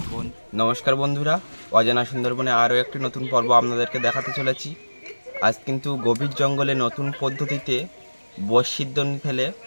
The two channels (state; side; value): inverted; both; correlation -1.00